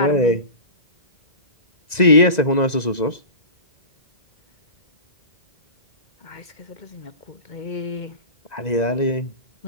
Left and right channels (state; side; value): late; right; 2.0 ms